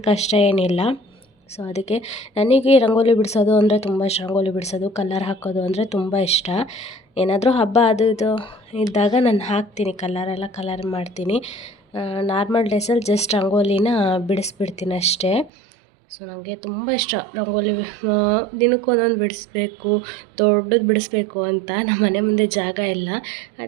ಕಷ್ಟ ಏನಿಲ್ಲ. ಸೊ ಅದಕ್ಕೆ ನನಗೆ ರಂಗೋಲಿ ಬಿಡಿಸೋದು ಅಂದರೆ ತುಂಬ ಇಷ್ಟ. ರಂಗೋಲಿ ಬಿಡಿಸೋದು, ಕಲರ್ ಹಾಕೋದು ಅಂದರೆ ತುಂಬ ಇಷ್ಟ. ಏನಾದರೂ ಹಬ್ಬ ಅದು ಇದು ಇದ್ದಾಗ ನಾನು ಹಾಕ್ತೀನಿ, ಕಲರ್ ಮಾಡ್ತೀನಿ. ನಾರ್ಮಲ್ ಡೇಸಲ್ಲಿ ಜಸ್ಟ್ ರಂಗೋಲಿನ ಬಿಡಿಸ್ಬಿಡ್ತೀನಿ ಅಷ್ಟೇ. ಸೊ ನನಗೆ ತುಂಬ ಇಷ್ಟ ರಂಗೋಲಿ. ದಿನಕ್ಕೊಂದೊಂದು ಬಿಡಿಸ್ಬೇಕು, ದೊಡ್ಡದು ಬಿಡಿಸ್ಬೇಕು ಅಂತ. ನಮ್ಮ ಮನೆ ಮುಂದೆ ಜಾಗ ಇಲ್ಲ,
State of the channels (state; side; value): drops out; left; at 15.5 s